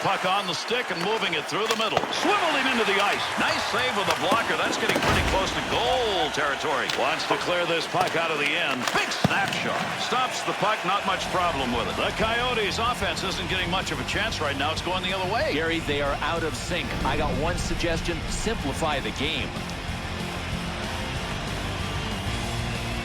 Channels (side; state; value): both; identical; correlation 1.00